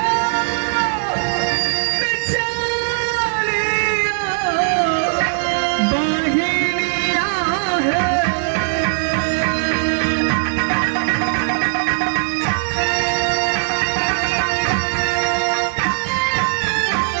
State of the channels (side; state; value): left; silent; 64 dB below the other